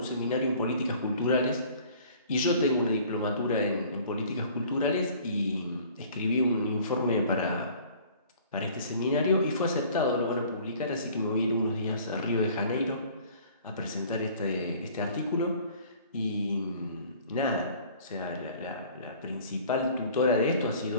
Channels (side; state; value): both; inverted; correlation -0.51